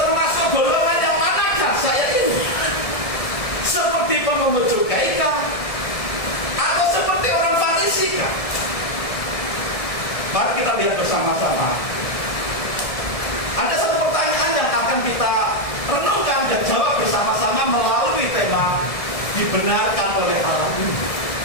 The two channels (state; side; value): late; right; 1.7 ms